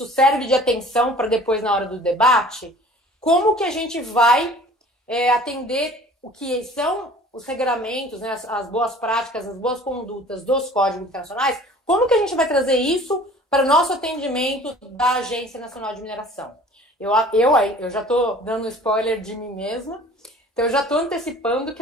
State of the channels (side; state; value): both; normal; correlation 0.48